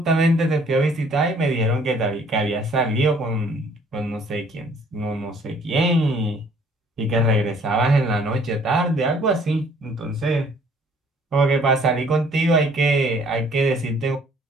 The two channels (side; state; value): both; normal; correlation 0.59